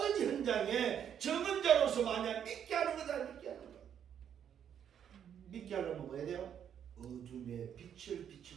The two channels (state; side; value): quieter; left; 8.9 dB